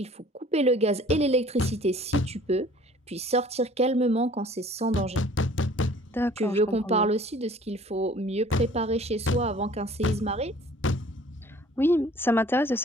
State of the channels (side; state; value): both; normal; correlation 0.52